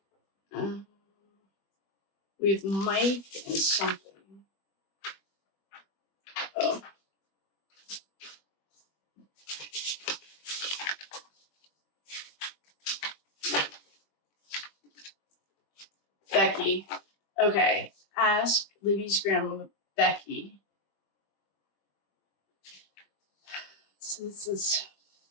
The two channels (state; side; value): late; right; 21 ms